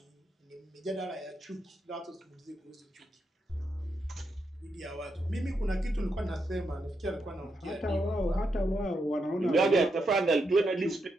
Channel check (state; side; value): normal; both; correlation 0.82